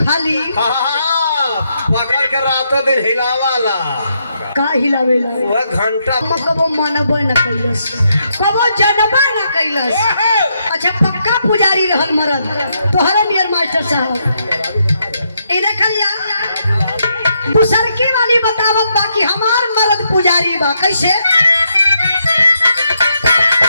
खाली पकड़ के रातों दिन हिलावाला। का हिलावेला वह घंटा कबो मनबे न कैलस, कबो जनबे न कैलस। अच्छा पक्का पुजारी रहल मरद तोहरा नियर मास्टर साहब। ए देखिया दूसरकी वाली बतावत बा कि हमार मरद पुजारी बा, कैसे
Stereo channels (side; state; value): both; inverted; correlation -0.78